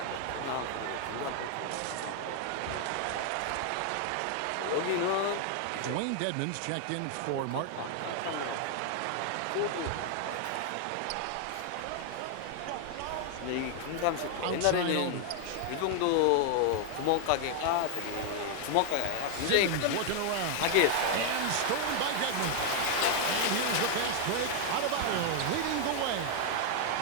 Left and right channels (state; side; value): different; both; correlation 0.00